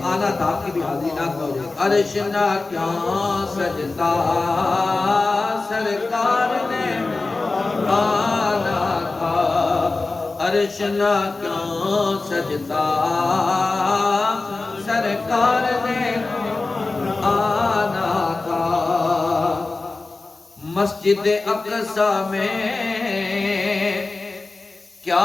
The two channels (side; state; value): right; quieter; 3.5 dB